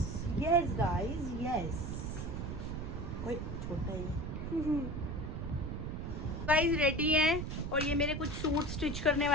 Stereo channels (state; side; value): noise; right; rumble, 4 dB below the sound